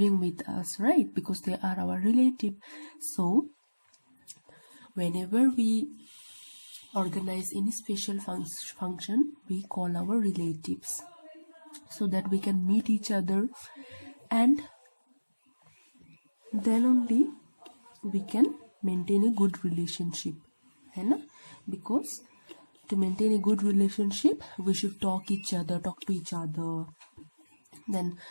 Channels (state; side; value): inverted; both; correlation -1.00